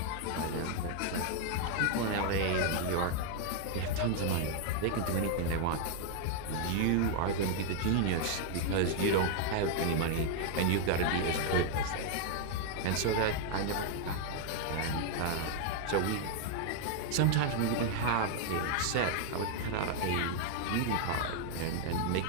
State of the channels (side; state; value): both; different; correlation 0.00